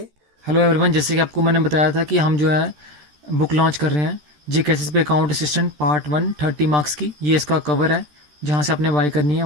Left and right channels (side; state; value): left; late; 13 ms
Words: हेलो एवरीवन, जैसे कि आपको मैंने बताया था कि हम जो है बुक लॉन्च कर रहे हैं जी कैसेस पे अकाउंट असिस्टेंट पार्ट 1 30 मार्क्स की। ये इसका कवर है जहाँ से आपने बाई करनी है